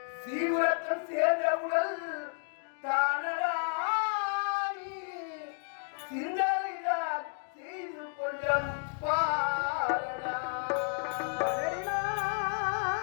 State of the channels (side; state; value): right; silent; 56 dB below the other